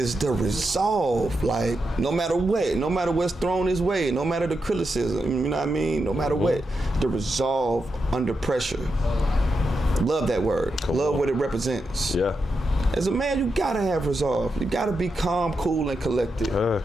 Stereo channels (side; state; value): both; normal; correlation 0.86